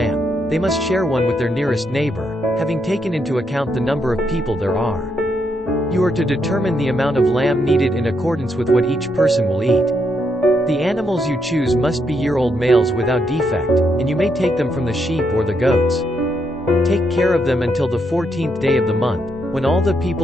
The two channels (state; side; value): normal; both; correlation 0.78